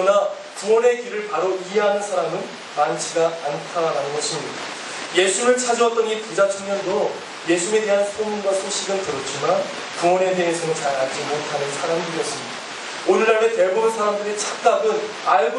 구원의 길을 바로 이해하는 사람은 많지가 않다라는 것입니다. 예수를 찾아왔던 이 부자 청년도 예수에 대한 소문과 소식은 들었지만 구원에 대해서는 잘 알지 못하는 사람들이었습니다. 오늘날의 대부분 사람들의 착각은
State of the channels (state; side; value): identical; both; correlation 1.00